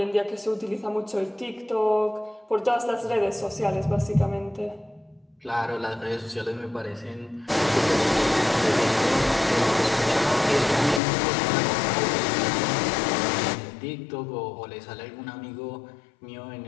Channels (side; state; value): right; drops out; at 11.0 s